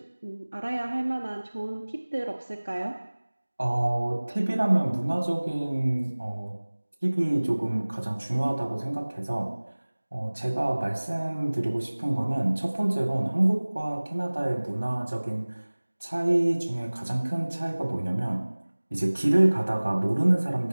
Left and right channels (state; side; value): inverted; both; correlation -1.00